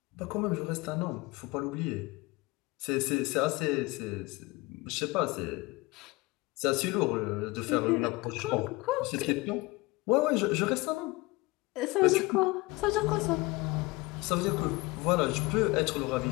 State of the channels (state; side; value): quieter; right; 22.6 dB